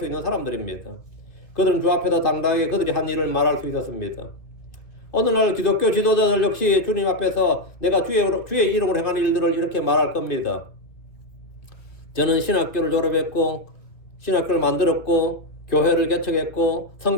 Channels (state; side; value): late; right; 2.1 ms